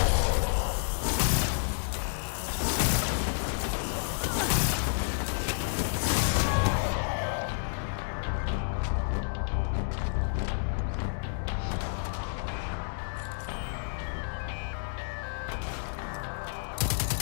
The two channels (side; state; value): right; silent; digital silence